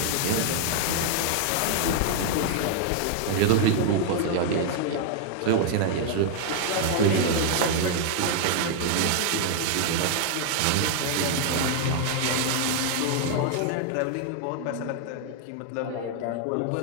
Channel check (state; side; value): different; both; correlation 0.00